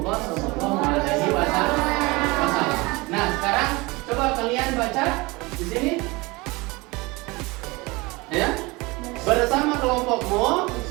SAW. Nah, sekarang coba kalian baca di sini, ya, bersama kelompokmu.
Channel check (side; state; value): left; quieter; 24.0 dB